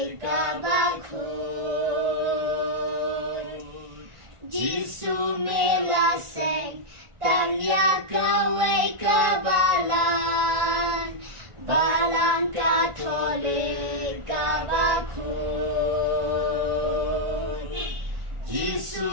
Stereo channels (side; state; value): left; late; 1.4 ms